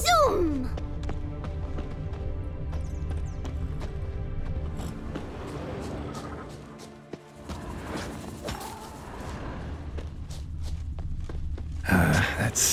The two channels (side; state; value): both; identical; correlation 1.00